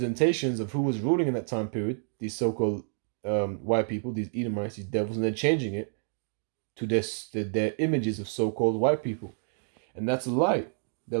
of who was ruling in that time period, these so-called white people, these Edomites, these devils, and they're changing it to their images of so-called white people. And that's a lie. They're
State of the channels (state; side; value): silent; left; digital silence